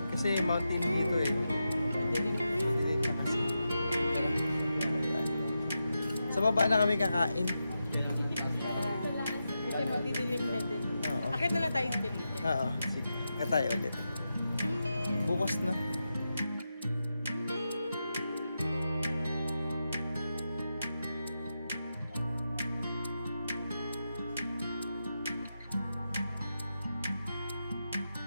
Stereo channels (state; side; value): inverted; both; correlation -0.88